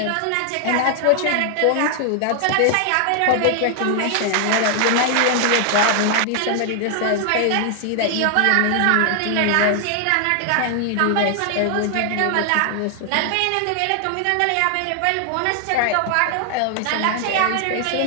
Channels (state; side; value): different; both; correlation 0.00